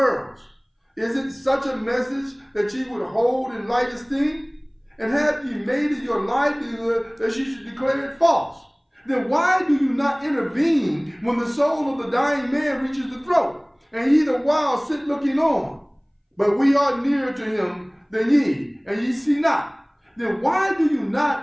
Is it such a message that ye would hold in light esteem? And have ye made it your livelihood that ye should declare it false? Then why do you not intervene when the soul of the dying man reaches the throat, and ye the while sit looking on? But we are nearer to him than ye, and ye see not. Then why do you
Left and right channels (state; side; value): identical; both; correlation 1.00